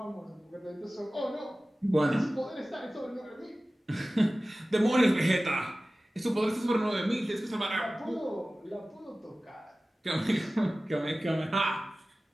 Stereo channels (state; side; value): normal; both; correlation 0.97